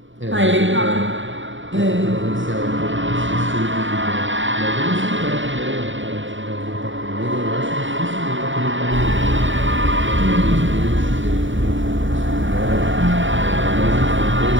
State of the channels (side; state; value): left; late; 0.56 ms